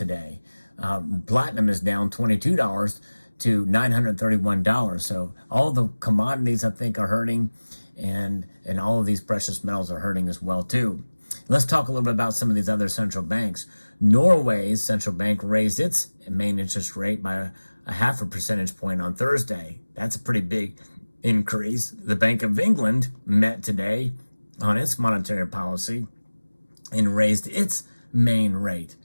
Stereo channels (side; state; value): both; inverted; correlation -1.00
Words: Platinum is down $22 to $931. So all the commodities, I think, are hurting, and all of these precious metals are hurting as well too. Let's talk a little bit about some of these other central banks. Norway's central bank raised its main interest rate by a 0.5 percentage point on Thursday. That's a pretty big increase. The Bank of England met today on its monetary policy and raised its main rate